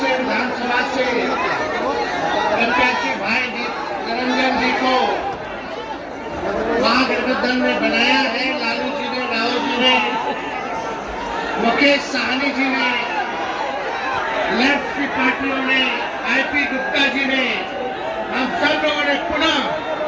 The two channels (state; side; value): identical; both; correlation 1.00